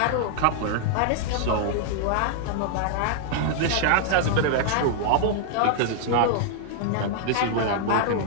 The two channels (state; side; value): different; both; correlation -0.01